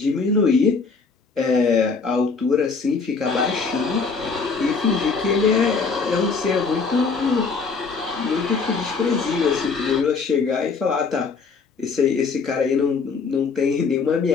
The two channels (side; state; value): right; quieter; 4.9 dB